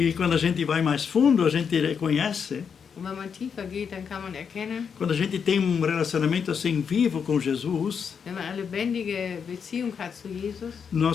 quando a gente vai mais fundo, a gente reconhece. Und wenn man tiefer geht, dann kann man erkennen, Quando a gente tem relacionamento assim vivo com Jesus, wenn man eine lebendige Beziehung hat zu Jesus,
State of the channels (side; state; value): right; quieter; 6.7 dB